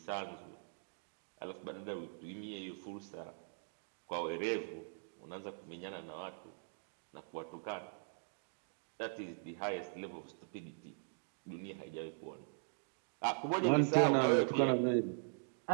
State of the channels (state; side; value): silent; left; digital silence